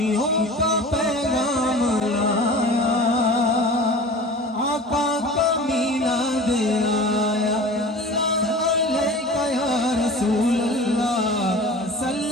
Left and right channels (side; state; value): both; normal; correlation 0.39